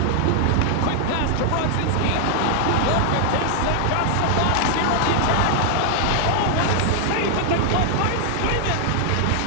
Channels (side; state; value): both; different; correlation 0.00